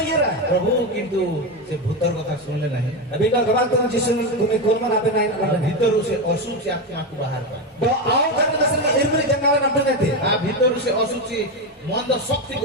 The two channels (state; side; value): normal; both; correlation 0.13